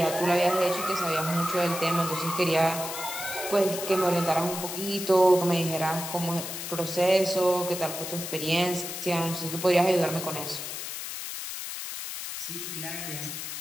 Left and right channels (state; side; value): noise; left; hiss, 7 dB below the sound